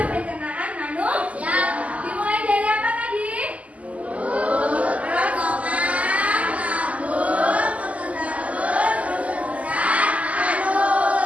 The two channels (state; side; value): late; left; 0.069 ms